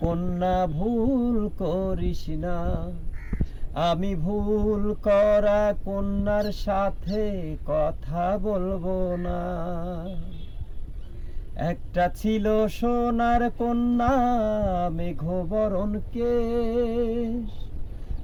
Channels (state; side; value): identical; both; correlation 1.00